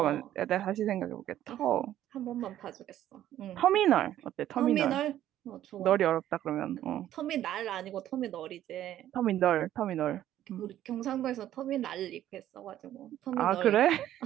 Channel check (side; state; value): left; quieter; 12.3 dB